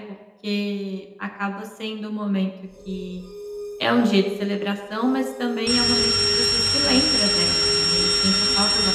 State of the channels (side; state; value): both; identical; correlation 1.00